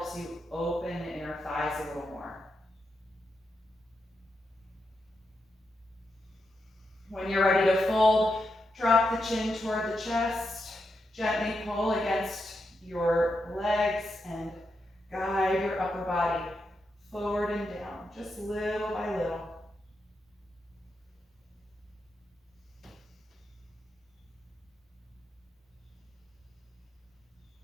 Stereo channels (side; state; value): both; normal; correlation 0.85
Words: you open the inner thighs a little more. When you're ready to fold, drop the chin toward the chest. Gently pull against your legs and guide your upper body forward and down, just little by little.